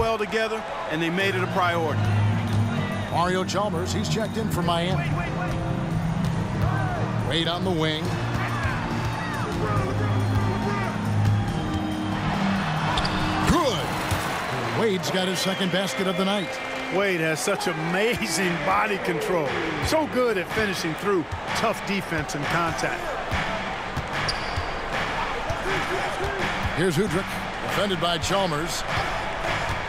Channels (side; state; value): both; identical; correlation 1.00